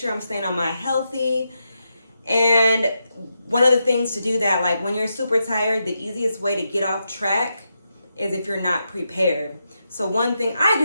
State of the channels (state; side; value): inverted; both; correlation -0.85